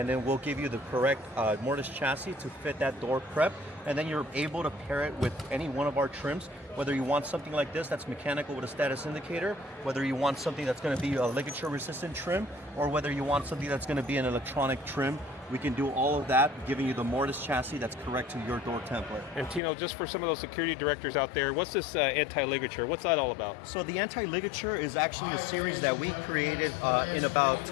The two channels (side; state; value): right; drops out; at 19.6 s